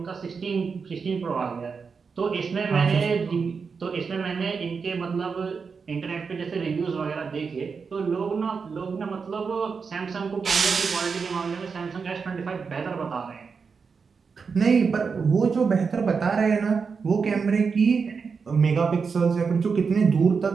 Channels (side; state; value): left; quieter; 5.4 dB